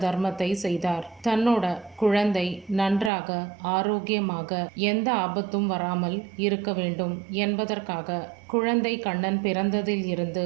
தர்மத்தை செய்தார்? தன்னோட குழந்தை நன்றாக ஆரோக்கியமாக எந்த ஆபத்தும் வராமல் இருக்க வேண்டும் என்பதற்காக குழந்தை கண்ணன் பிறந்ததில் இருந்து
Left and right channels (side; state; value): left; drops out; at 3.1 s